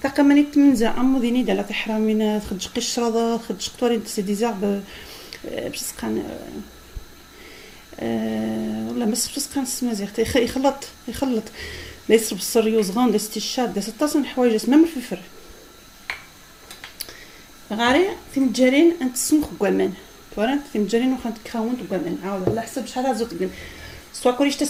تقامني تمنزا امو ديني دالا تحرامين خدج قشره خدج قطورين سي ديزارب باش سقان ولا مس سقان سمازيغ يخلط ليس بالصر يوزغون داس الشاد داس الطاسن حوايج اسمها من الفلفل غاري تمجرين انت سمخ كوامان تورنت تمجرين وخا تكراون كوامان عاود على حسب شحال زوت كن سوا كلش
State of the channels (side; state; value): both; identical; correlation 1.00